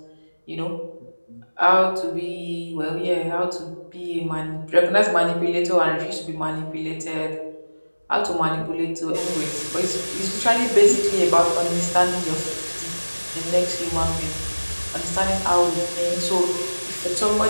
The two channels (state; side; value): inverted; both; correlation -1.00